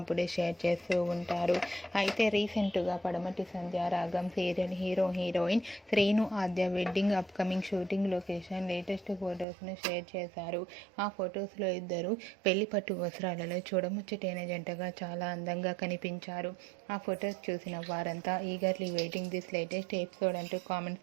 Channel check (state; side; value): drops out; left; at 9.5 s